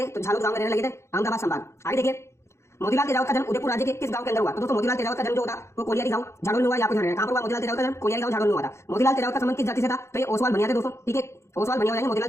थे? तो झालोद गांव में रहने लगे थे, अहमदाबाद संभाग। आगे देखिए, मोतीलाल तेजावत का जन्म उदयपुर राज्य के किस गांव के अंदर हुआ? तो दोस्तों मोतीलाल तेजावत का जन्म जो होता वो कोलियारी गांव झाड़ोल में हुआ, आपको ध्यान रखना है। कहां पर हुआ मोतीलाल तेजावत का जन्म? कोलियारी गांव झाड़ोल में हुआ था। मोतीलाल तेजावत का संबंध किस जाति से था? तो ये ओसवाल बनिया थे दोस्तों। ठीक है, ओसवाल बनिया हो जाएंगे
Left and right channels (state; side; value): late; right; 0.13 ms